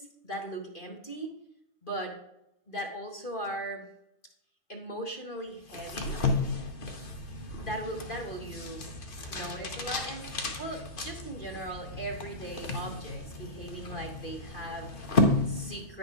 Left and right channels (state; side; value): late; right; 2.5 ms